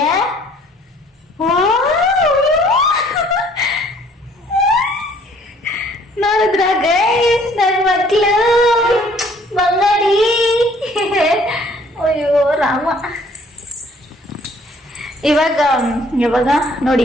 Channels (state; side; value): normal; both; correlation 0.59